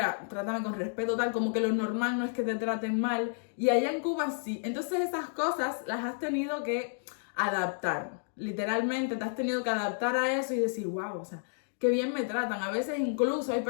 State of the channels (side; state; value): right; silent; digital silence